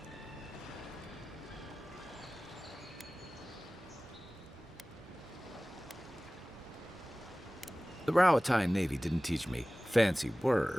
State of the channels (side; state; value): both; normal; correlation 0.98